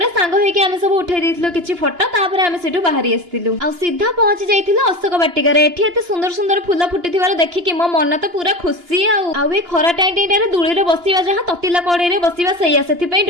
सांग होई कि आमे सब उठै देइथिलो किछि फोटो तापरे आमे सेठु बाहरी आस्थिलु। आ सीधा पहुंची जाइथिलो अशोक बाटिका रे। एठी एते सुंदर सुंदर फूल फुटिथिबार देखि कि मो मन तो पूरा खुशी। आ ए खरा टाइम रे दुळी रे बसिबा जहा ततिला कड़े रे बसिबा सैया सेथि पई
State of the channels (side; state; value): left; late; 2.9 ms